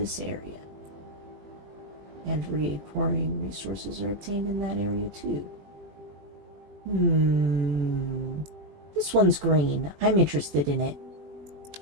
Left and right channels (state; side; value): late; left; 20 ms